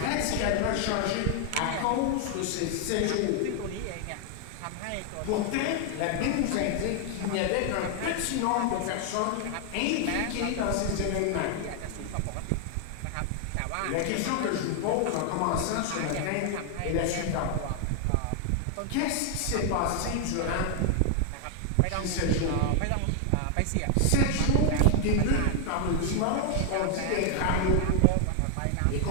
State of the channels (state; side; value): different; both; correlation 0.00